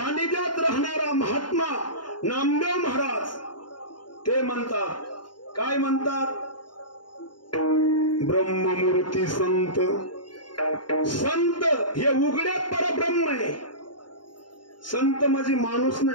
राहणारा महात्मा नामदेव महाराज ते म्हणतात. काय म्हणतात? ब्रह्ममूर्ती संत. संत हे उघड्यात परब्रह्म आहे. संत म्हणजे माणूस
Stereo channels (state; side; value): late; right; 0.71 ms